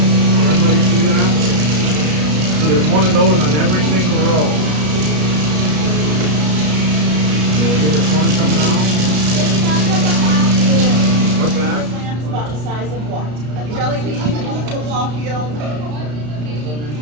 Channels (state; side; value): late; left; 33 ms